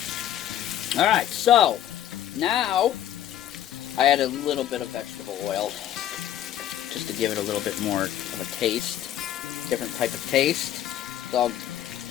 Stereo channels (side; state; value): right; quieter; 11.7 dB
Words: Alright, so now I add a little bit of vegetable oil just to give it a little bit more of a taste, different type of taste. It's all